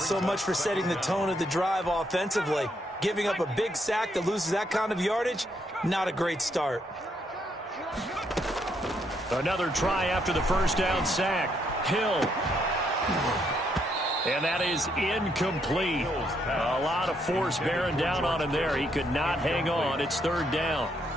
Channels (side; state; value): both; normal; correlation 0.74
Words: much for setting the tone of the drive offensively. Giving up a big sack that loses that kind of yardage, not a great start. Another try after the 1st down sack. Hill. And that is incomplete. A lot of force bearing down on him there. He could not hang on. It's 3rd down.